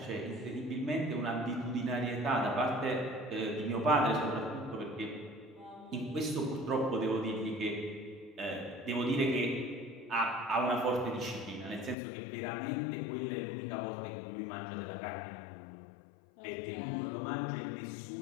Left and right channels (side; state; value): right; drops out; at 12.0 s